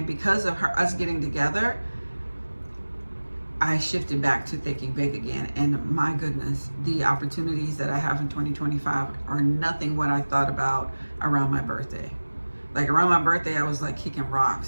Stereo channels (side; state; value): both; inverted; correlation -1.00